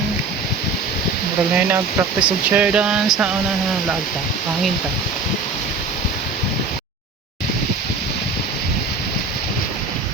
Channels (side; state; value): left; quieter; 4.0 dB